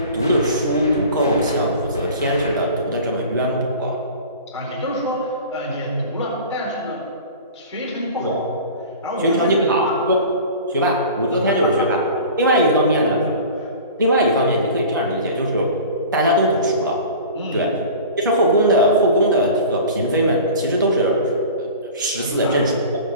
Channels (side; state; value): both; inverted; correlation -0.39